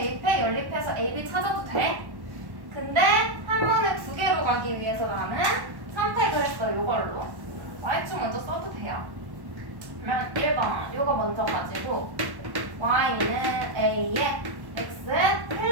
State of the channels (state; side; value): late; left; 1.1 ms